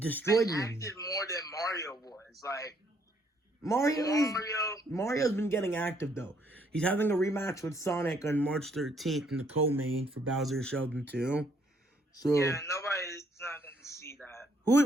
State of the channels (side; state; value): both; normal; correlation 0.68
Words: me. Acted more than Mario was. Like Mario's been getting active though. He's having a rematch with Sonic on March 13th in the co-main for Bowser Sheldon too. So yeah, nobody's not gonna see that.